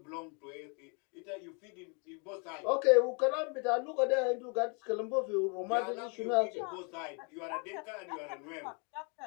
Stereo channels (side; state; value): right; quieter; 35.5 dB